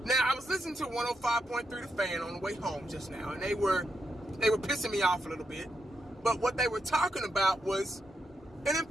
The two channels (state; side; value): normal; both; correlation 0.83